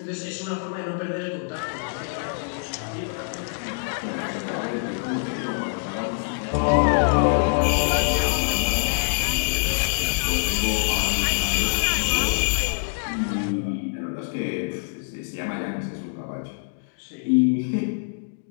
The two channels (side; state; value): right; silent; digital silence